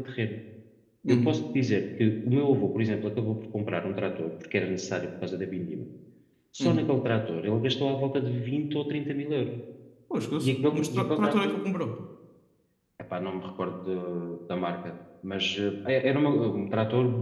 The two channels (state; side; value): identical; both; correlation 1.00